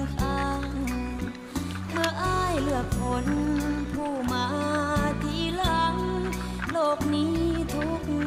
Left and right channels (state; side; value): identical; both; correlation 1.00